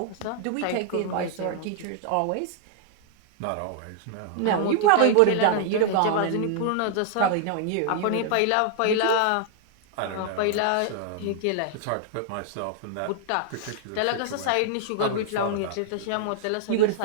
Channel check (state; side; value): different; both; correlation -0.01